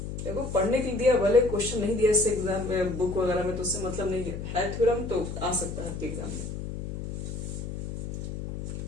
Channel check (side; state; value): left; noise; hum, 6 dB below the sound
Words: देखो पढ़ने के लिए दिया, भले क्वेश्चन नहीं दिया इससे एग्जाम में बुक वगैरह में, तो उससे मतलब नहीं है थ्योरम तो आ सकता है आपके एग्जाम में।